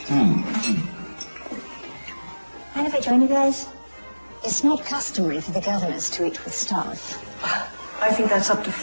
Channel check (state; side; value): inverted; both; correlation -1.00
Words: Mind if I join you guys? It's not customary for the governors to eat with staff. I think that's up to